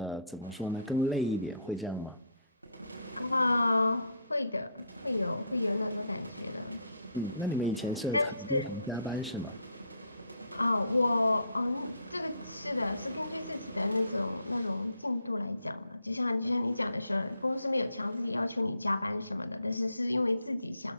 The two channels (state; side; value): inverted; both; correlation -0.66